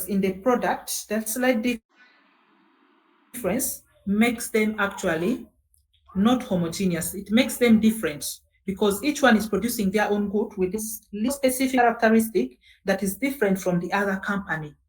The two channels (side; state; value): both; identical; correlation 1.00